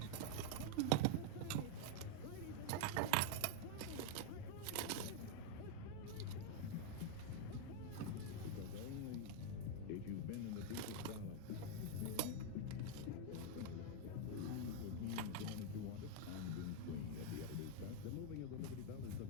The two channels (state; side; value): different; both; correlation 0.00